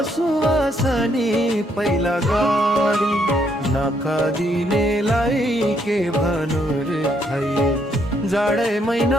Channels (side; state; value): both; normal; correlation 0.72